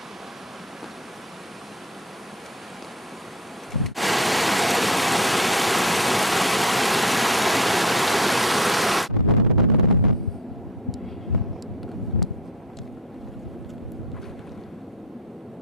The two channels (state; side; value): normal; both; correlation 0.37